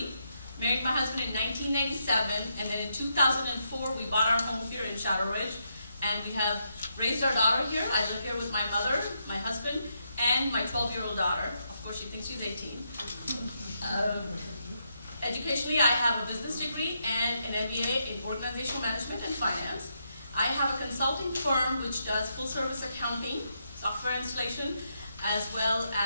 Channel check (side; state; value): both; inverted; correlation -0.80